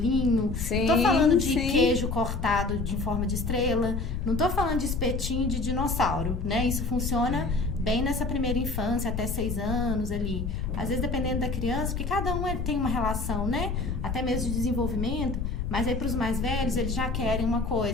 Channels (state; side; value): noise; left; rumble, 3 dB below the sound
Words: não tô falando de queijo cortado em forma de estrela, não tô falando de espetinho de dinossauro, né? Isso funciona bem nessa primeira infância, até 6 anos ali. Às vezes, dependendo da criança, porque cada um tem uma relação, né? Até mesmo de desenvolvimento. Mas aí, para os mais velhos, eles já querem uma